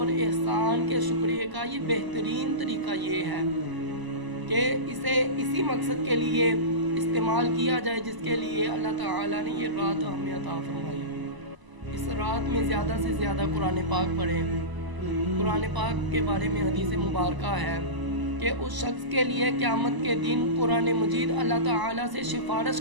احسان کے شکریہ کا یہ بہترین طریقہ یہ ہے کہ اسے اسی مقصد کے لیے استعمال کیا جائے جس کے لیے اللہ تعالیٰ نے یہ رات ہمیں عطا فرمائی۔ اس رات میں زیادہ سے زیادہ قرآن پاک پڑھیں۔ قرآن پاک کے بارے میں حدیث مبارکہ ہے کہ اس شخص کے لیے قیامت کے دن قرآن مجید اللہ تعالیٰ سے سفارش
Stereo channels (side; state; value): left; late; 1.0 ms